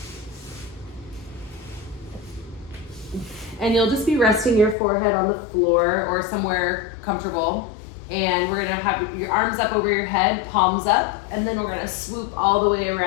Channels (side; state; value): right; drops out; at 4.8 s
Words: And you'll just be resting your forehead on the floor or somewhere comfortable. And we're gonna have your arms up over your head, palms up, and then we're gonna swoop all the way